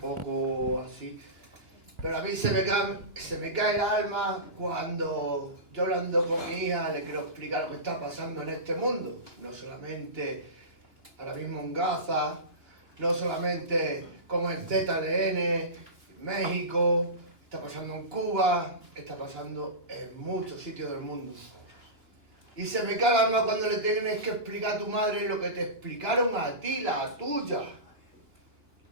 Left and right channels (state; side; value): late; left; 2.9 ms